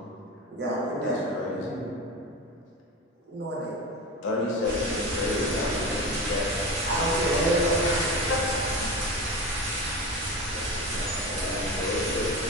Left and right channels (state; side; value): normal; both; correlation 0.27